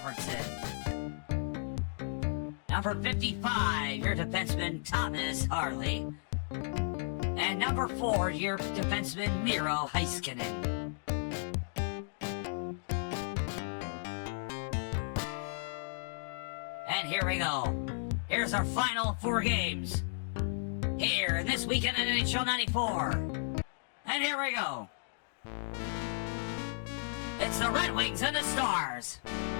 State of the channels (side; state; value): right; silent; digital silence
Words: Number 55, your defenseman, Thomas Harley. And number 4, your defenseman, Miro Heiskanen. And here we go. Here's our final 4 games. Here, This Weekend in NHL 94. And here we go. It's the Red Wings and the Stars.